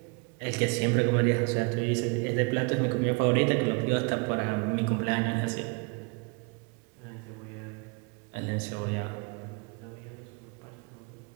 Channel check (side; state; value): left; quieter; 31.6 dB